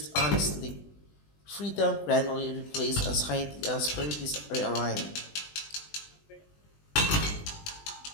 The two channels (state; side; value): late; right; 20 ms